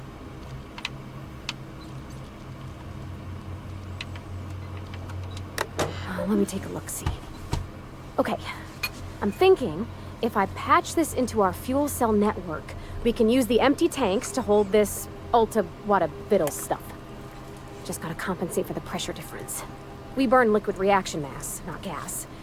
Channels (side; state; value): both; identical; correlation 1.00